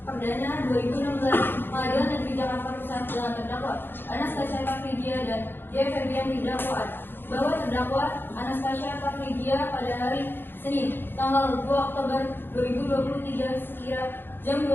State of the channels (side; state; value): right; late; 0.10 ms